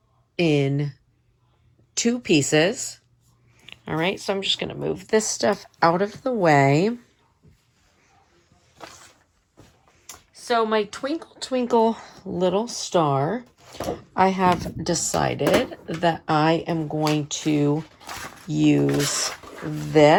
in 2 pieces. All right, so I'm just going to move this stuff out of the way. So my twinkle, twinkle little star, I have decided that I am going to use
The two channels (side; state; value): both; identical; correlation 1.00